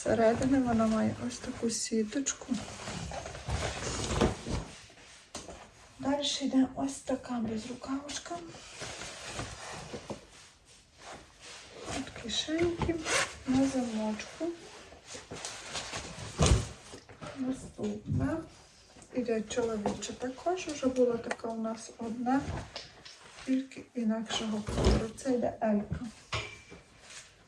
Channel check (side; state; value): both; identical; correlation 1.00